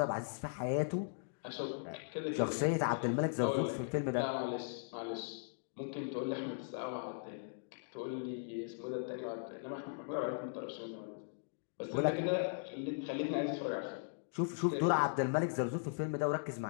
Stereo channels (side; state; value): right; silent; digital silence